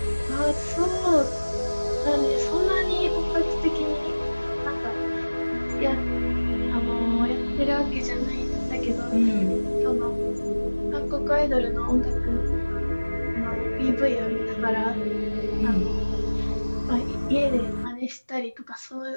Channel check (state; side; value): inverted; both; correlation -1.00